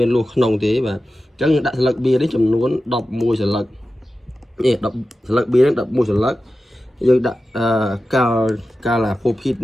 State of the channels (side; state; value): both; normal; correlation 0.93